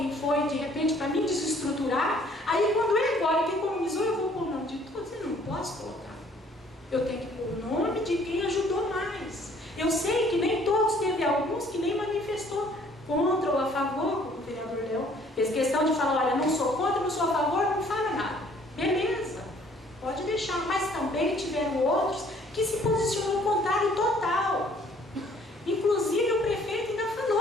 foi, de repente, para me desestruturar. Aí quando ele agora que economizou, eu vou pôr o nome de todos, eu não posso colocar. Eu tenho que pôr o nome de quem ajudou mais. Eu sei que nem todos, teve alguns que nem manifestou contra ou a favor, como o vereador Léo fez questão de falar, olha, não sou contra, não sou a favor, não fala nada. Beleza, pode deixar, mas também tiveram outros que se posicionou contrário total. Inclusive o prefeito ainda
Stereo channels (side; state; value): both; normal; correlation 0.59